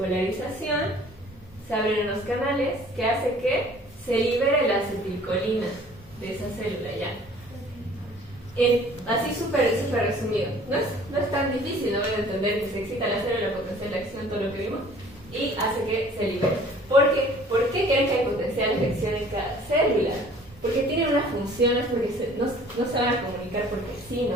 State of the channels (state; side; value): normal; both; correlation 0.52